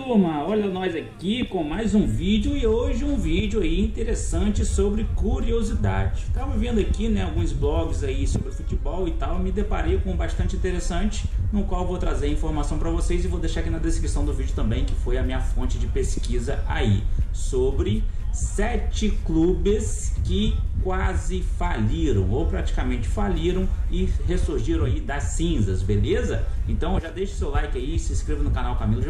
olha nós aqui com mais um vídeo e hoje um vídeo aí interessante sobre curiosidade. Tava vendo aqui, né, alguns blogs aí sobre futebol e tal, me deparei com bastante interessante, no qual vou trazer informação para vocês e vou deixar aqui na descrição do vídeo também, que foi a minha fonte de pesquisa aí, sobre 7 clubes que quase faliram ou praticamente faliram e ressurgiram aí das cinzas, beleza? Então já deixa o seu like aí, se inscreva no canal Camilo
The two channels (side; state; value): both; identical; correlation 1.00